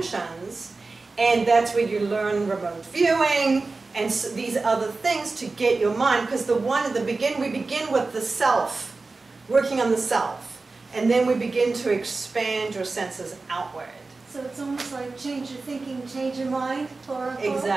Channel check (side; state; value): left; quieter; 3.7 dB